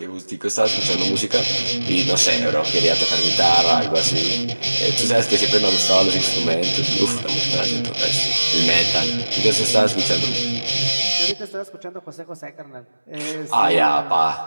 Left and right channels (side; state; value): both; inverted; correlation -1.00